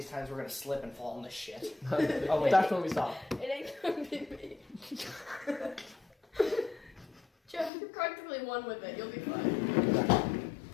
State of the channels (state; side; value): drops out; right; at 7.7 s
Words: times we're gonna slip and fall in this shit. Oh, wait. That's when we stop. It ain't gonna be me. Jeff, you're cutting practically one with it. You'll be fine.